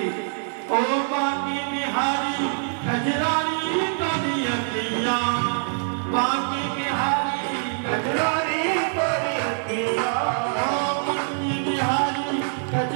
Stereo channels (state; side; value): silent; left; 55 dB below the other